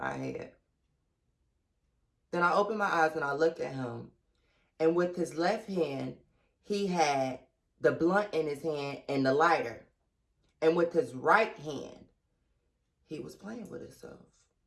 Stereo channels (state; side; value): identical; both; correlation 1.00